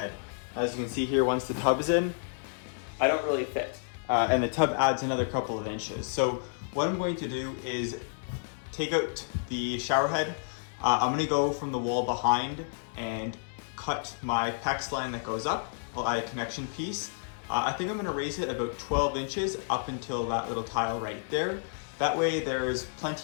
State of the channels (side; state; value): right; silent; 58 dB below the other